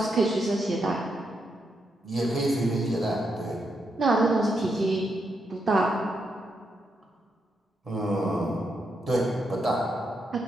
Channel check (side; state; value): both; normal; correlation 0.81